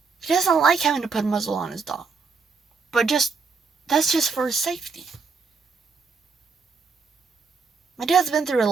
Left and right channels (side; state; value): left; quieter; 4.9 dB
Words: He doesn't like having to put a muzzle on his dog. But that's just for his safety. My dad's been through a